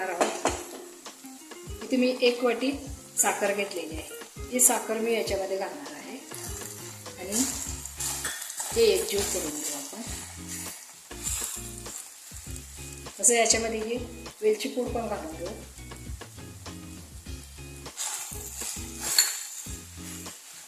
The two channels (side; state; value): both; identical; correlation 1.00